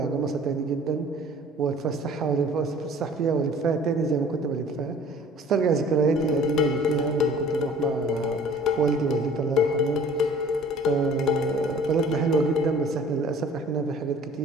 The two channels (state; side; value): normal; both; correlation 0.49